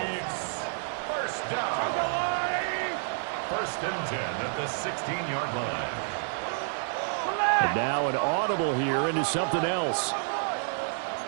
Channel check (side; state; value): left; silent; 58 dB below the other